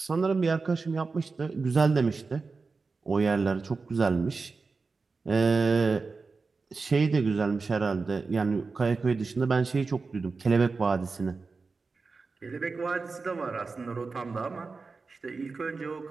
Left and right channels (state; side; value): quieter; left; 4.3 dB